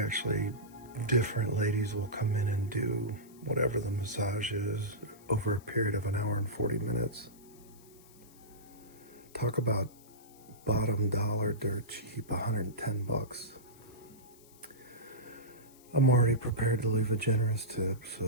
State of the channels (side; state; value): left; noise; hiss, 25 dB below the sound